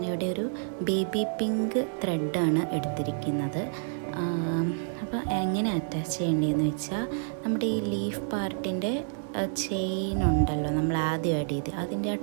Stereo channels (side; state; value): left; silent; digital silence